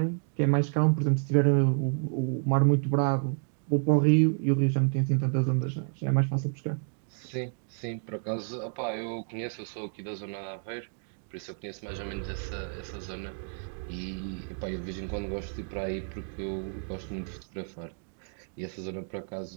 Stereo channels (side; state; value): left; silent; 58 dB below the other